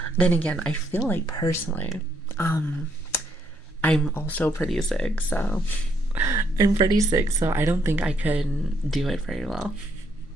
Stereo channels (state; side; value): normal; both; correlation 0.73